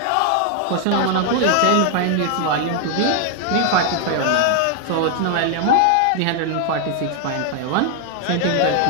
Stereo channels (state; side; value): different; both; correlation 0.00